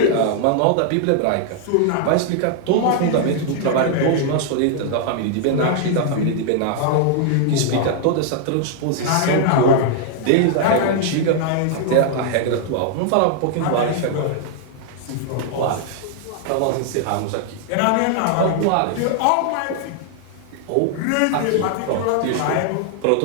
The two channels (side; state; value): both; different; correlation -0.01